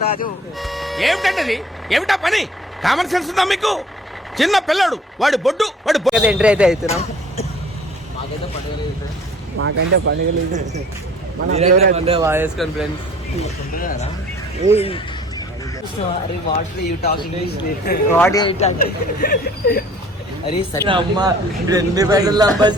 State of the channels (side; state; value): both; normal; correlation 0.51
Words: ఏమిటండి, ఏమిటా పని? కామన్ సెన్స్ ఉందా మీకు? చిన్న పిల్లడు, వాడు బొడ్డు ఎంట్రీ అయితే అవుతున్నాం. మాకంటే పండుగ లేదు.